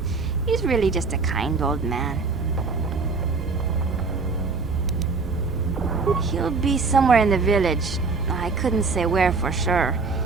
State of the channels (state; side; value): quieter; left; 4.4 dB